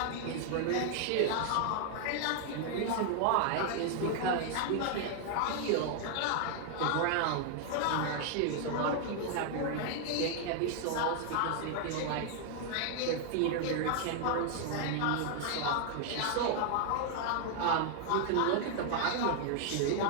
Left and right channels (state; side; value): different; both; correlation 0.00